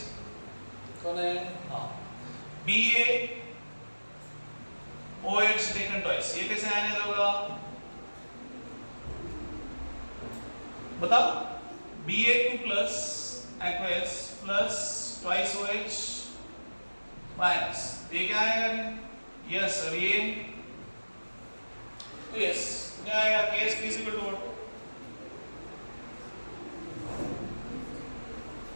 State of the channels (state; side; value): inverted; both; correlation -1.00